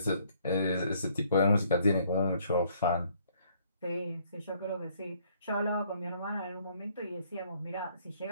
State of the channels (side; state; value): both; inverted; correlation -0.65